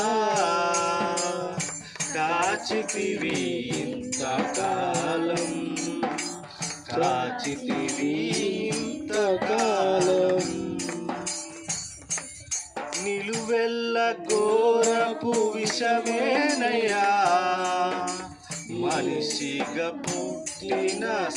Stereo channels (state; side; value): identical; both; correlation 1.00